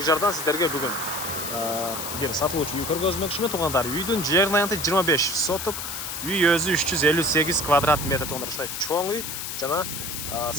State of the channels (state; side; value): noise; left; hiss, 5 dB below the sound